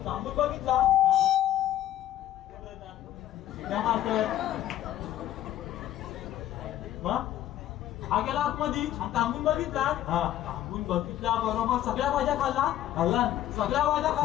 तांबूळ बघितला हा गेला आतमध्ये आणि तांबून बघितला. तांबून बघितला बरोबर सगळ्या भाज्या खाल्ला. सगळ्या भाज्या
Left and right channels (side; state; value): right; quieter; 12.7 dB